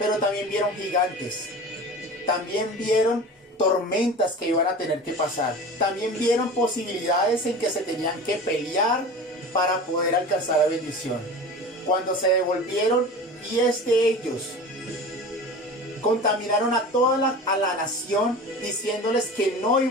también vieron gigantes. También vieron tormentas que iban a tener que pasar. También vieron posibilidades en que se tenían que pelear para poder alcanzar la bendición. Cuando se devolvieron, 10 de ellos contaminaron a toda la nación, diciéndoles que no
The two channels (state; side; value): normal; both; correlation 0.35